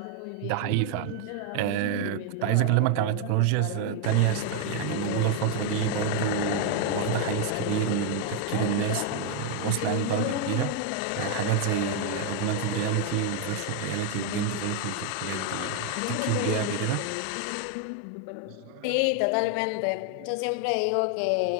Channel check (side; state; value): both; different; correlation 0.01